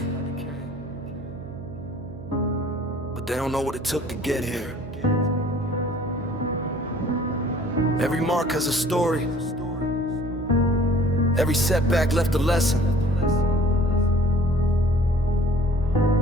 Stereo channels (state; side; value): noise; right; hum, 14 dB below the sound